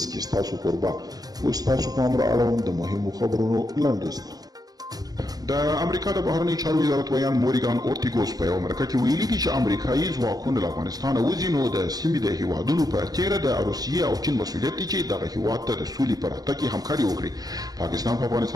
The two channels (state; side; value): late; left; 0.18 ms